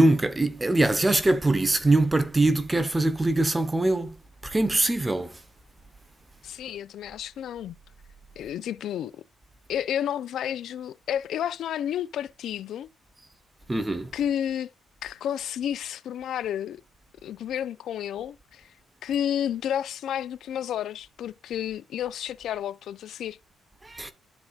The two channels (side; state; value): both; normal; correlation 0.84